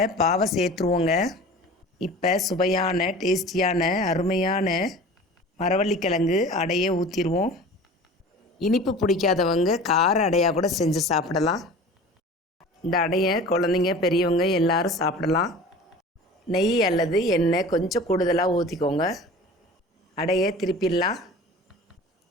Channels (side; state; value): both; normal; correlation 0.40